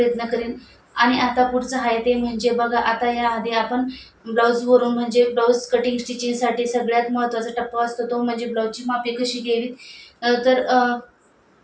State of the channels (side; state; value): both; identical; correlation 1.00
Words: करेन. आणि आता पुढचं आहे ते म्हणजे बघा, आता याआधी आपण ब्लाऊजवरून म्हणजे ब्लाऊज कटिंग स्टिचिंगसाठी सगळ्यात महत्त्वाचा टप्पा असतो तो म्हणजे ब्लाऊजची मापे कशी घ्यावीत.